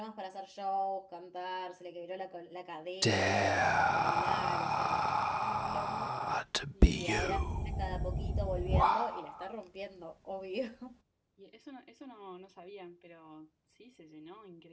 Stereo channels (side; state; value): both; identical; correlation 1.00